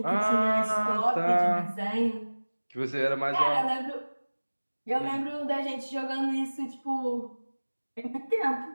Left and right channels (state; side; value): inverted; both; correlation -1.00